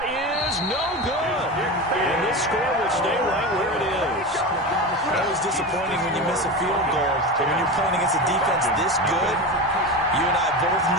is no good. And this score will stay right where it is. Always disappointing when you miss a field goal. But when you're playing against a defense this good, you and I both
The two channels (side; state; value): both; normal; correlation 0.24